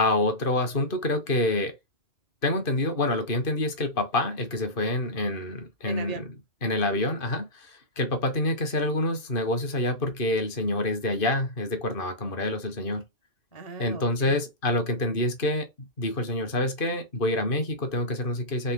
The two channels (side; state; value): right; late; 2.5 ms